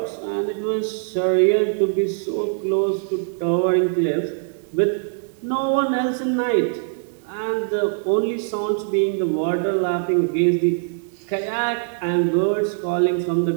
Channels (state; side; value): silent; left; digital silence